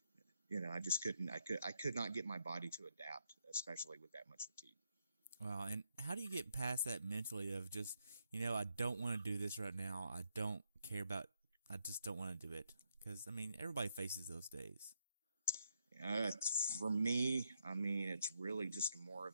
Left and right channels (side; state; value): both; inverted; correlation -0.78